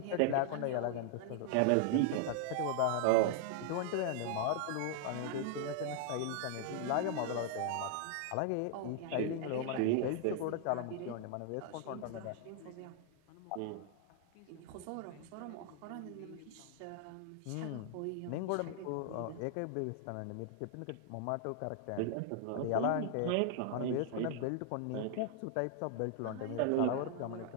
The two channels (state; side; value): different; both; correlation 0.00